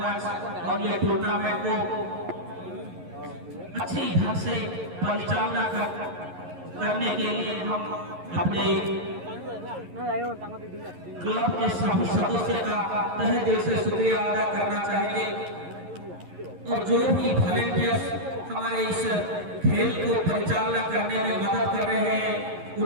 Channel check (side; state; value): left; late; 11 ms